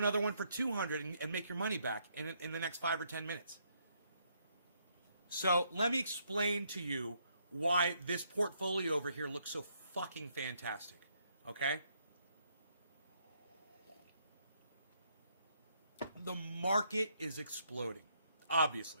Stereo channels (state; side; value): inverted; both; correlation -0.72